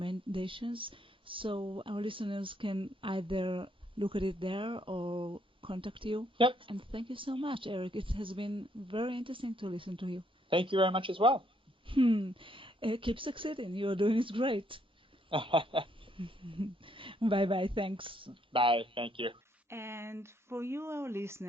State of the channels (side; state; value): both; normal; correlation 0.71